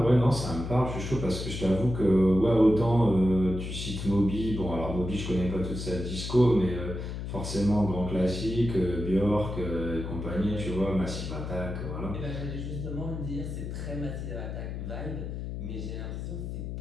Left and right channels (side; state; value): left; noise; hum, 6 dB below the sound